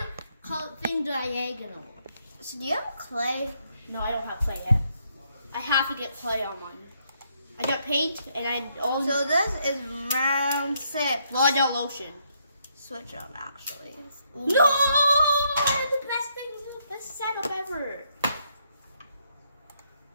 the thing diagonal? So do you have clay? No, I don't have clay yet. I have to get clay on mine. I got paint and I also. So this is round 6. Well, I got lotion. Switch up, actually. No! The best thing, the best setup ever.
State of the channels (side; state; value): both; inverted; correlation -0.74